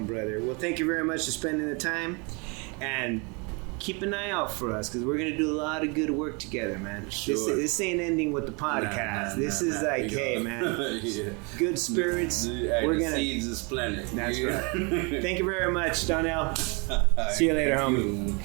brother. Well, thank you very much for spending the time, and keep an eye out for us because we're gonna do a lot of good work together, man. Sure. This ain't ending with the podcast. This is like, hey, man, good spirits. We're gonna seeds is planted. That's right. Thank you very much, Donnell. See you later,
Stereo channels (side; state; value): left; quieter; 31.5 dB